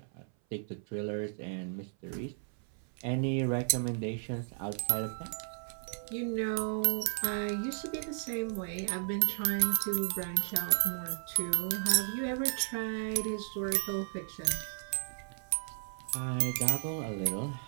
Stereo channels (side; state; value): left; silent; 55 dB below the other